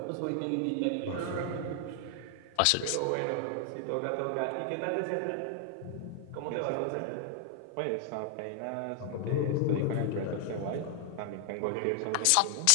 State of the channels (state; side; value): different; both; correlation 0.00